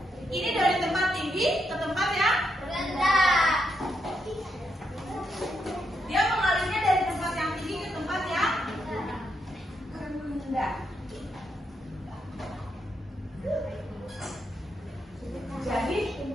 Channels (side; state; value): both; normal; correlation 0.80